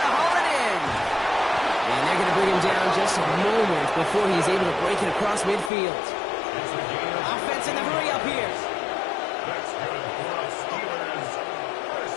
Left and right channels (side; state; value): right; drops out; at 5.7 s